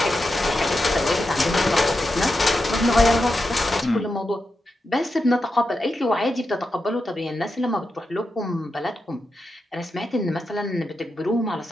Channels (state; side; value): normal; both; correlation 0.88